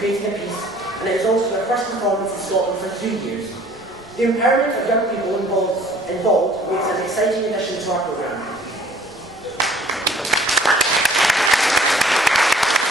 a piece, and it is also their first performance in Scotland for 3 years. The empowerment of young people involved makes an exciting addition to our programme.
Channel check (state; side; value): noise; left; rumble, 28 dB below the sound